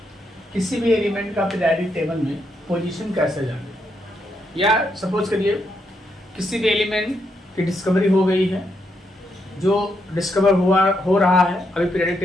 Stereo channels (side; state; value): both; normal; correlation 0.79